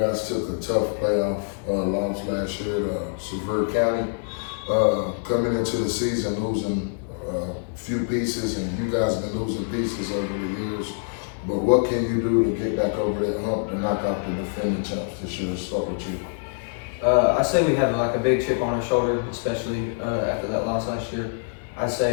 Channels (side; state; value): right; silent; digital silence